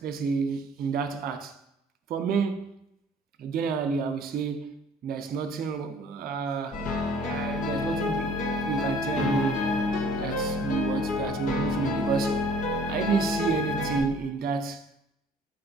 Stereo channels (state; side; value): normal; both; correlation 0.53